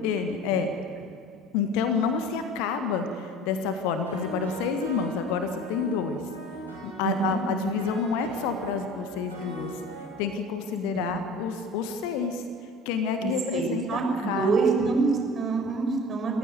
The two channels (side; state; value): both; normal; correlation 0.39